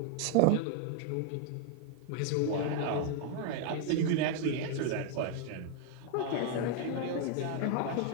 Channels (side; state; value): both; different; correlation 0.00